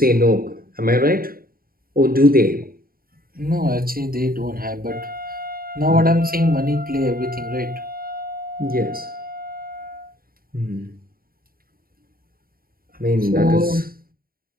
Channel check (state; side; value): late; left; 0.43 ms